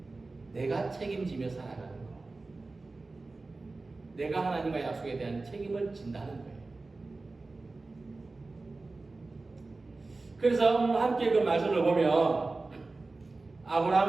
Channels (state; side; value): quieter; left; 3.5 dB